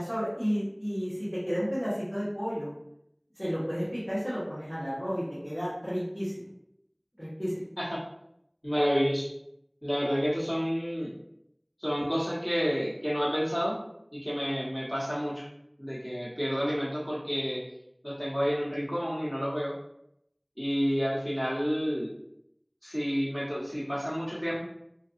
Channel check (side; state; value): both; identical; correlation 1.00